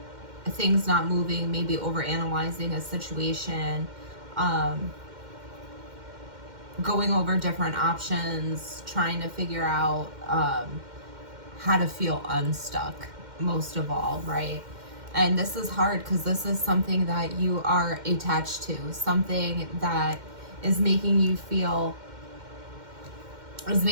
Things not moving, maybe overanalyzing a situation, going over different options, trying to figure out how to feel unstuck, most of all, right? And this is hard because this is something that you are attached to, something that is making you feel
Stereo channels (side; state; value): left; late; 2.1 ms